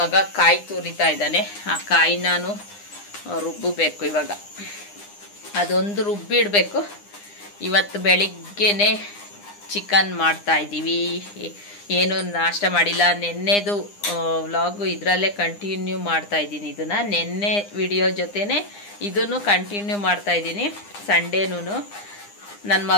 ಕಾಯಿ ತುರಿತಾ ಇದ್ದಾನೆ, ಆ ಕಾಯಿ ನಾನು ರುಬ್ಬಬೇಕು. ಇವಾಗ ಅದೊಂದು ರುಬ್ಬಿಡಬೇಕು. ಇವತ್ತು ಬೆಳಿಗ್ಗೆನೆ ಚಿಕನ್ ಮಾಡ್ತಾ ಇದ್ದೀವಿ. ಏನು ನಾಷ್ಟ ಮಾಡಿಲ್ಲ. ನೆನ್ನೆದು ವ್ಲಾಗು ಇದರಲ್ಲೇ ಕಂಟಿನ್ಯೂ ಮಾಡ್ತಾ ಇದ್ದೀನಿ. ಇದನ್ನು ನೆನ್ನೆ ವಿಡಿಯೋ ಜೊತೆನೆ ಇದನ್ನು ಕಂಟಿನ್ಯೂ ಮಾಡ್ತಾ ಇದ್ದೀನಿ. ಸಂಡೇನೂ ನನ್ನ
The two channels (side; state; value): right; late; 9.8 ms